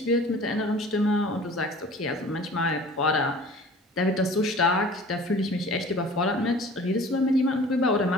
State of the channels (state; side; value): normal; both; correlation 0.45